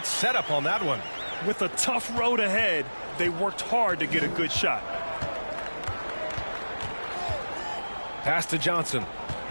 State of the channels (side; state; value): both; inverted; correlation -1.00